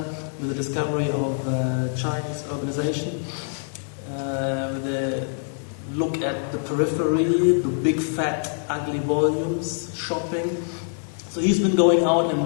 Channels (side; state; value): right; silent; digital silence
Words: with the discovery of Chinese urbanization, with the look at the periphery, the big fat ugly volumes, shopping. So he's been going out